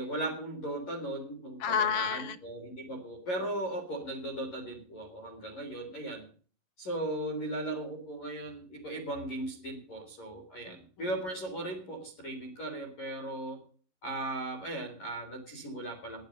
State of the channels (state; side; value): late; right; 11 ms